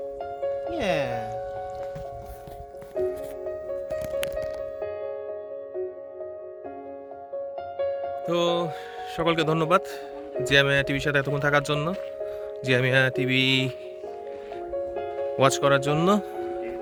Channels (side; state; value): both; identical; correlation 1.00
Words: Yeah. তো সকলকে ধন্যবাদ জিএমএ টিভির সাথে এতক্ষণ থাকার জন্য, জিএমএ টিভি ওয়াচ করার জন্য।